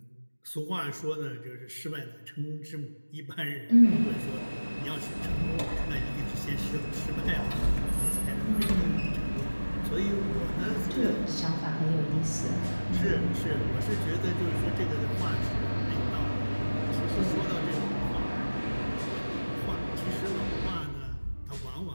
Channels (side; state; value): both; inverted; correlation -1.00